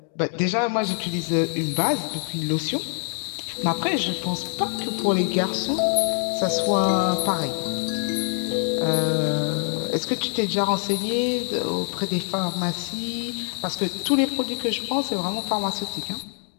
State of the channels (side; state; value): right; silent; digital silence